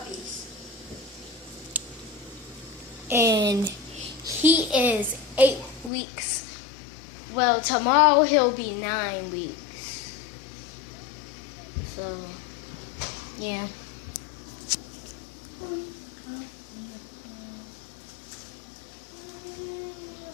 And he is 8 weeks. Well, tomorrow he'll be 9 weeks. So, yeah.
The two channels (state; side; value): drops out; right; at 5.9 s